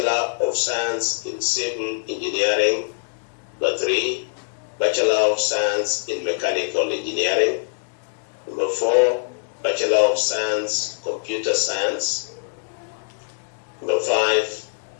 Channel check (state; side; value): silent; right; 63 dB below the other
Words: of Science in Civil Engineering. Number 3, Bachelor of Science in Mechanical Engineering. Number 4, Bachelor of Science, Computer Science. Number 5,